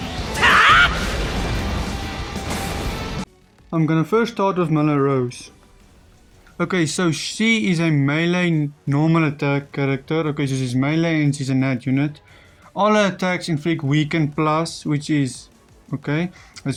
gonna first start with Melrose. Okay, so she is a melee normal attack character. Okay, so she's melee and she's a nat unit. All her attacks inflict weaken plus, which is okay,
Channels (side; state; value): both; identical; correlation 1.00